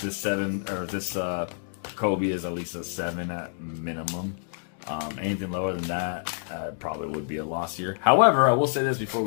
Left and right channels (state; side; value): silent; right; digital silence